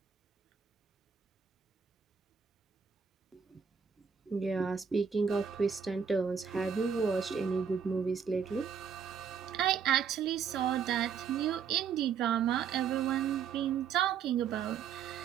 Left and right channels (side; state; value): left; quieter; 7.0 dB